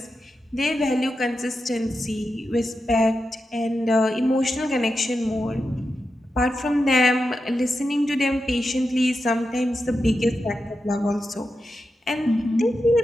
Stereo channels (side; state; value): both; normal; correlation 0.89